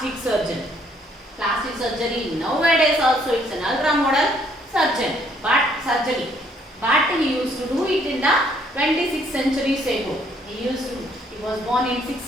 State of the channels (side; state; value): both; normal; correlation 0.66